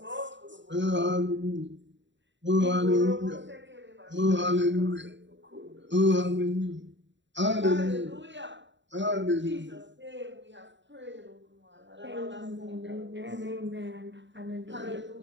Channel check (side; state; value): left; late; 0.53 ms